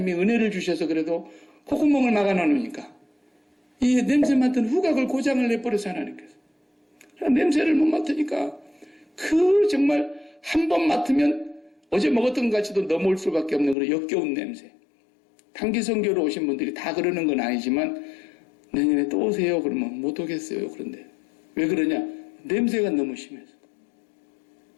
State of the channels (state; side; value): drops out; right; at 13.8 s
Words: 은혜를 주셔서 그래도 콧구멍을 막아놓으니까 이 냄새 맡은 후각을 고장을 내버려서 하나님께서 냄새를 못 맡으니까 그 정말 한 번 맡으면 어제 먹었던 것 같이도 넘어올 수밖에 없는 그런 역겨운 냄새. 단기 선교로 오신 분들이 다 그러는 건 아니지만 내년에 또 오세요 그러면 못 오겠어요. 그런데 왜 그러냐? 냄새가 너무 심해서.